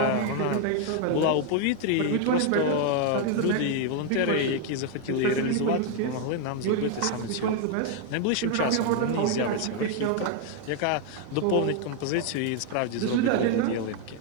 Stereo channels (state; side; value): different; both; correlation 0.01